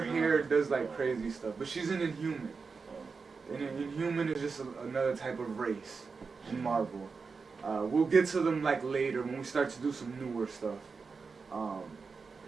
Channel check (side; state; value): left; quieter; 4.9 dB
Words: hair does like crazy stuff. But she's an Inhuman. And an Inhuman is just another type of race in Marvel. We'll get to them like later when we start to do some newer stuff.